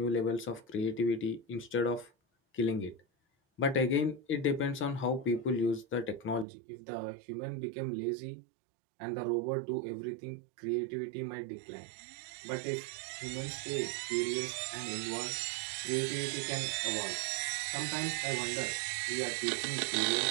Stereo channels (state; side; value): drops out; left; at 6.5 s